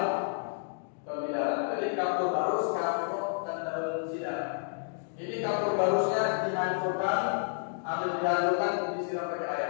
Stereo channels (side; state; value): right; silent; digital silence